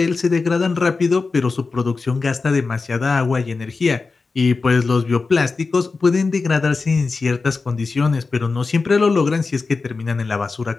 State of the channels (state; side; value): quieter; right; 4.2 dB